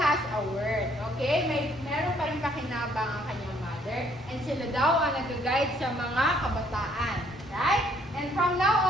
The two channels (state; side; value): normal; both; correlation 0.64